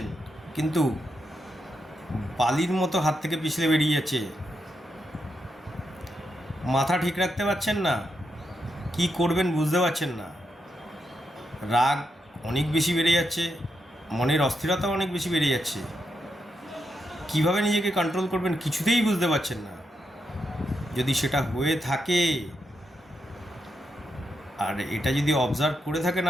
কিন্তু বালির মতো হাত থেকে পিছলে বেরিয়ে যাচ্ছে। মাথা ঠিক রাখতে পারছেন না, কি করবেন বুঝতে পারছেন না। রাগ অনেক বেশি বেড়ে যাচ্ছে, মনের অস্থিরতা অনেক বেশি বেড়ে যাচ্ছে। কিভাবে নিজেকে কন্ট্রোল করবেন কিছুতেই বুঝতে পারছেন না। যদি সেটা হয়ে থাকে, আর এটা যদি অবজার্ভ করে থাকেন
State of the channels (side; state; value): both; normal; correlation 0.83